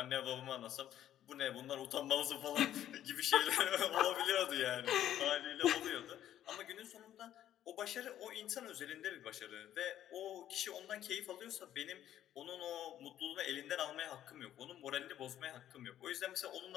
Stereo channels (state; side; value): quieter; right; 11.6 dB